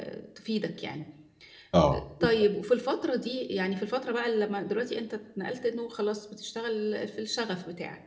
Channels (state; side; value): identical; both; correlation 1.00